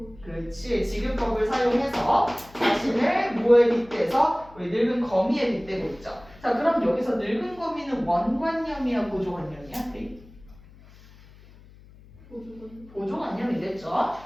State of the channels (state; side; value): noise; left; hum, 23 dB below the sound